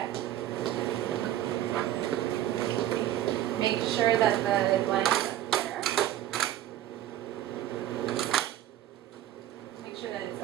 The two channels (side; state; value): left; quieter; 12.8 dB